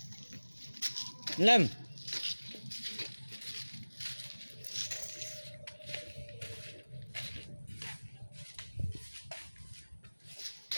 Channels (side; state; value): both; inverted; correlation -1.00